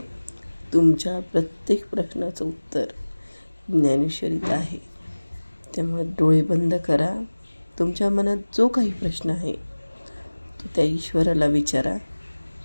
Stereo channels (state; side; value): inverted; both; correlation -1.00